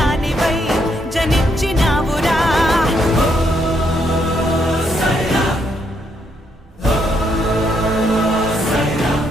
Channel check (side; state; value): both; normal; correlation 0.75